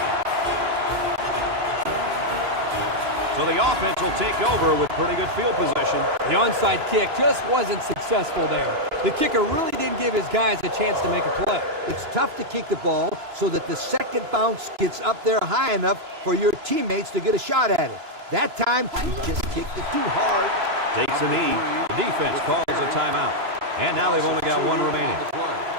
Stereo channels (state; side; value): late; left; 3.0 ms